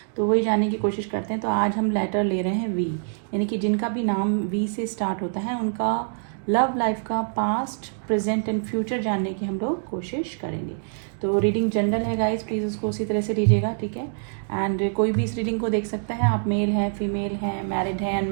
तो वही जानने की कोशिश करते हैं। तो आज हम लेटर ले रहे हैं वी, यानी कि जिनका भी नाम वी से स्टार्ट होता है उनका लव लाइफ का पास्ट प्रेजेंट एंड फ्यूचर जानने की हम लोग कोशिश करेंगे। तो रीडिंग जनरल है गाइस, प्लीज़ उसको उसी तरह से लीजिएगा, ठीक है। एंड कोई भी इस रीडिंग को देख सकता है, आप मेल हैं, फीमेल हैं, मैरिड हैं,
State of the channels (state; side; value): silent; left; digital silence